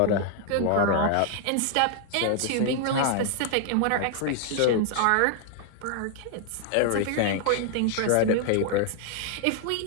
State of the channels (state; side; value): different; both; correlation 0.00